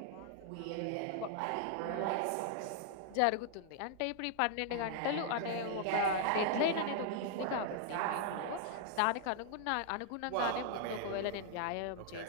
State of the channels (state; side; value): different; both; correlation -0.01